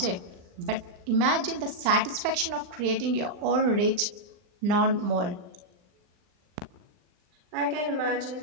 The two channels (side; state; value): left; late; 39 ms